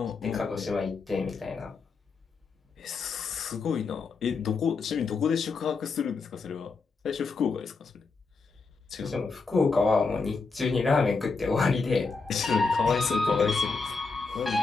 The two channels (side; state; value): right; quieter; 4.4 dB